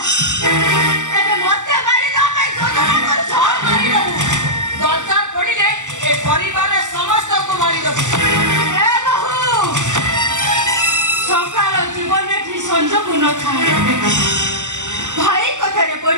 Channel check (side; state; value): left; late; 0.85 ms